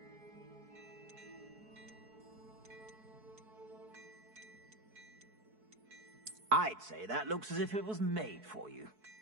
I'd say that looks as if it was made for you.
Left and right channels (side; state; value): left; late; 4.6 ms